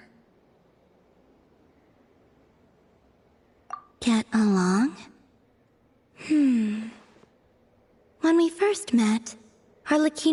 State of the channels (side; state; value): both; identical; correlation 1.00